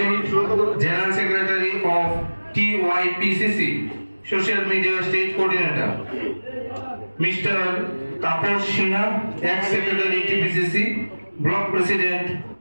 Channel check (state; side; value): inverted; both; correlation -1.00